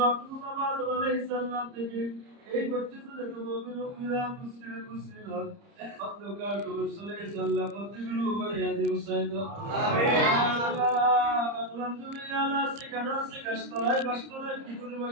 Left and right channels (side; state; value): left; late; 30 ms